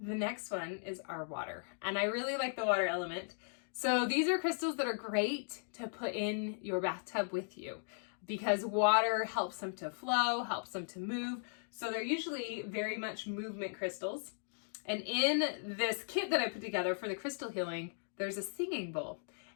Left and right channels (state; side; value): silent; right; digital silence